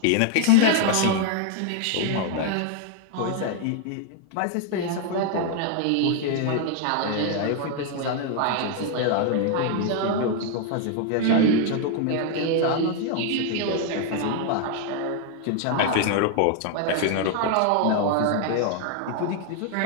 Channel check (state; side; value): different; both; correlation 0.00